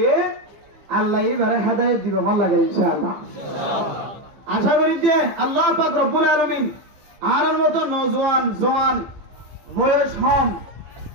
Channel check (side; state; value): left; late; 15 ms